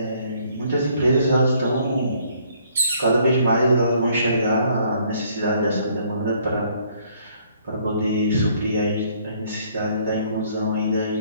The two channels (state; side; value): inverted; both; correlation -0.64